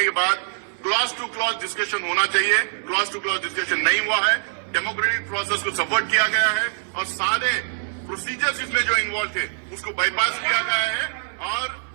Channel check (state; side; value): silent; left; 60 dB below the other